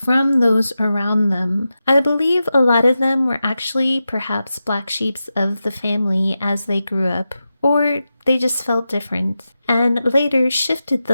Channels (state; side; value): inverted; both; correlation -0.91